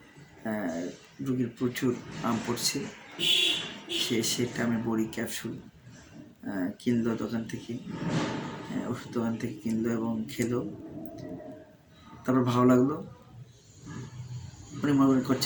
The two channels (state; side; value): identical; both; correlation 1.00